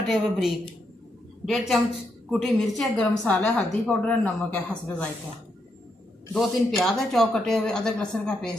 हुए बारीक, 1.5 चम्मच कुटी मिर्च है, गरम मसाला है, हल्दी पाउडर है, नमक है हस्ब जायका, 2-3 प्याज है चॉप कटे हुए, अदरक लहसुन का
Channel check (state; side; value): normal; both; correlation 0.80